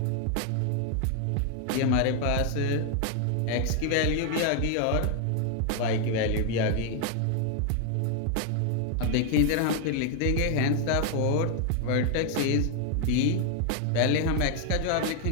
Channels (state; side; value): different; both; correlation 0.00